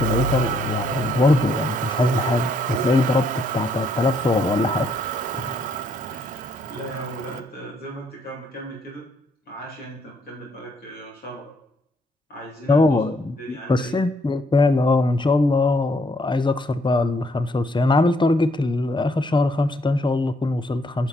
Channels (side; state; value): both; normal; correlation 0.70